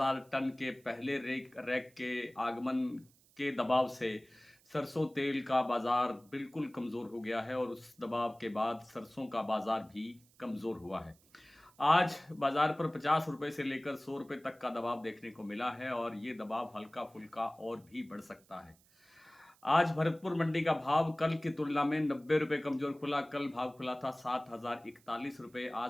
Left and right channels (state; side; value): noise; right; hiss, 30 dB below the sound